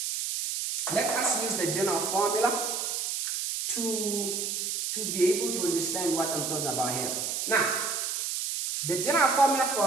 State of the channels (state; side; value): noise; right; hiss, 2 dB below the sound